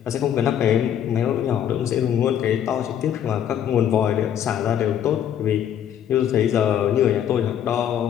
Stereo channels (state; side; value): quieter; right; 9.7 dB